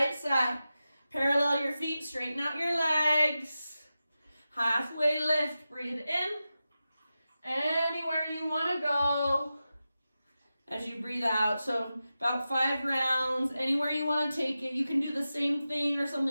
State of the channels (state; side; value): inverted; both; correlation -0.93